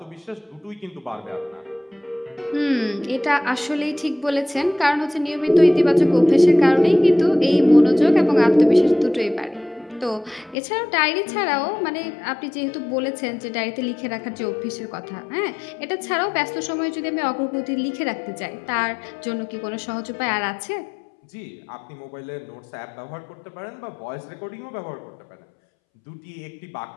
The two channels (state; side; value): drops out; right; at 10.6 s